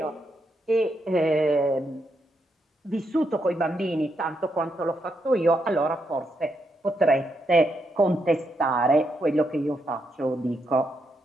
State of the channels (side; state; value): both; normal; correlation 0.80